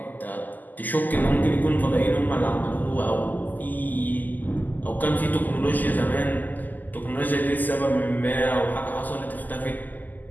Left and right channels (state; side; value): late; right; 0.084 ms